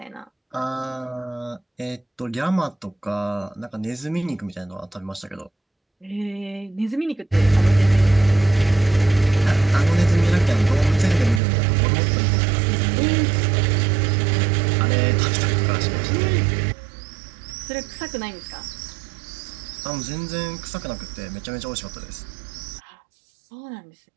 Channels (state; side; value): drops out; left; at 11.4 s